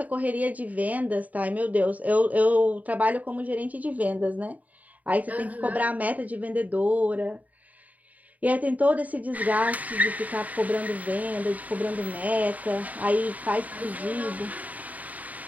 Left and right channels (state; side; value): late; left; 0.074 ms